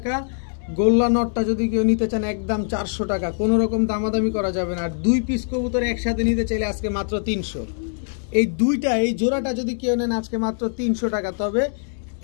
গোল্লা নটটা যদি কেউ নিতে চান একদম 400 টাকা, কোনো রকম দামাদামি করা যাবে না। আর 2 পিস কবুতর একসাথে নিতে চাইলে আজকে মাত্র 300। এই জোড়াটা যদি কেউ নেন আজকে মাত্র 300 টাকা। তবে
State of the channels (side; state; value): right; silent; digital silence